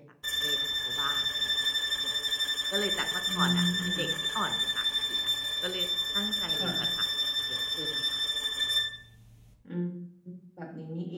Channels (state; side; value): identical; both; correlation 1.00